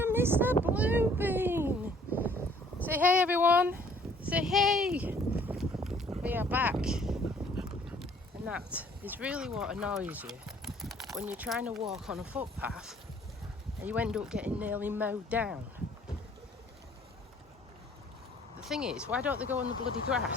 Mr. Bluebean. Say hey everyone, say hey. We are back, and that is really what annoys you when you're trying to walk on a footpath and you end up getting nearly mowed down. The thing is, why don't they go on the bloody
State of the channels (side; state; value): both; normal; correlation 0.58